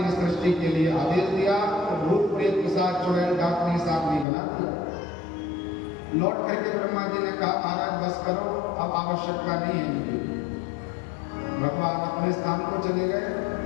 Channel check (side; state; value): right; drops out; at 4.2 s